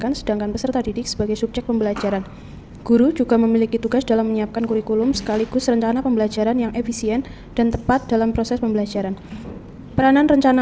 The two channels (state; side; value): identical; both; correlation 1.00